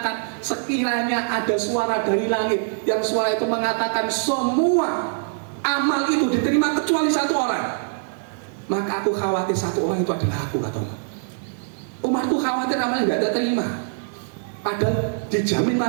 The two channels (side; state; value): left; silent; 63 dB below the other